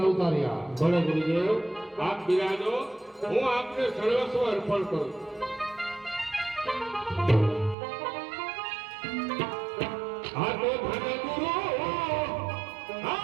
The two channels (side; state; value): left; drops out; at 7.8 s